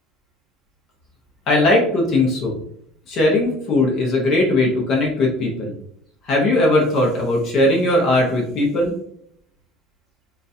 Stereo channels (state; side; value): normal; both; correlation 0.51